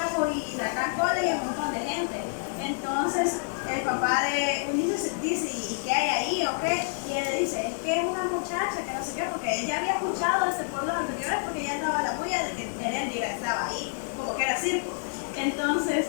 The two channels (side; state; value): right; silent; digital silence